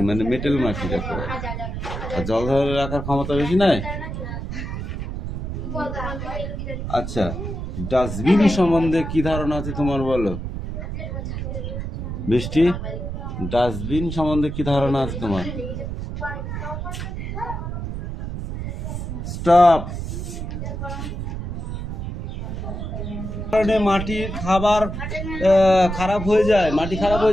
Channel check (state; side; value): noise; right; rumble, 5 dB below the sound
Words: মানে মেটেল মাটি রাখা। আর জল ধরে রাখার ক্ষমতা বেশি নয়। আচ্ছা, ডাস্টবিন সম্বন্ধে কি ধারণা আছে তোমার বলো বৃষ্টি? ডাস্টবিন সম্বন্ধে কি ধারণা আছে তোমার? স্টপ। কারণে মাটির খাবার খারাপ হয়ে যায়, মাটি খারাপ